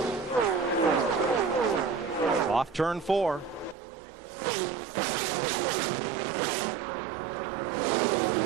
Off turn 4.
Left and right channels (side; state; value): left; drops out; at 3.8 s